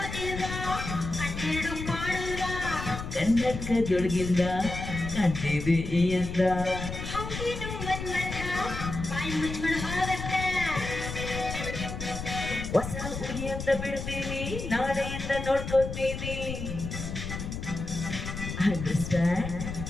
ಕನ್ನಡಕದೊಳಗಿಂದ ಕಾಣ್ತಿದೆ ಈ ಅಂದ. ಹೊಸ ಹುಡುಗಿಯಿಂದ ಬಿಡ್ತೀನಿ, ನಾಳೆಯಿಂದ ನೋಡ್ಕೊತೀನಿ. ಅಂಡರ್ಸ್ಟ್ಯಾಂಡ್?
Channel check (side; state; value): left; noise; rumble, 6 dB below the sound